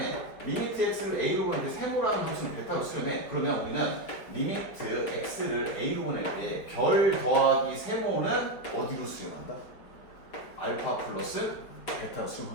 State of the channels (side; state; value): right; late; 4.8 ms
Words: 리미트 x를 a로 보낼 때 세모라는 함수는 베타로 수렴해. 그러면 우리는 리미트 x를 a로 보낼 때 별 더하기 세모는 어디로 수렴한다? 알파 플러스 베타로